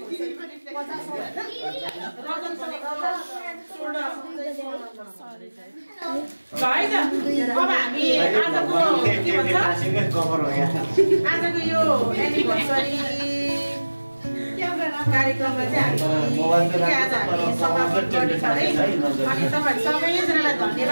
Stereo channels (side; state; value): both; inverted; correlation -1.00